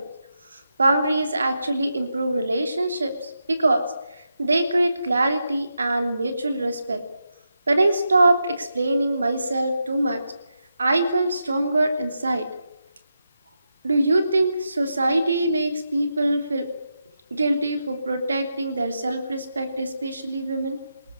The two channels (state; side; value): inverted; both; correlation -0.86